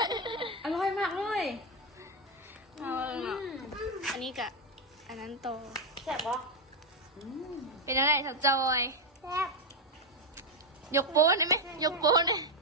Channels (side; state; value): both; normal; correlation 0.05